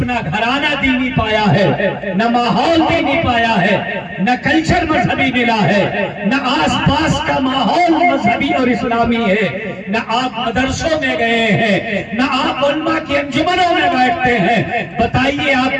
گھرانہ دینی پایا ہے، نہ ماحول دینی پایا ہے، نہ کلچر مذہبی ملا ہے، نہ آس پاس کا ماحول مذہبی اور اسلامی ہے، نہ آپ مدرسوں میں گئے ہیں، نہ آپ علماء کی انجمنوں میں بیٹھتے ہیں۔ بتائیے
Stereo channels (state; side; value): identical; both; correlation 1.00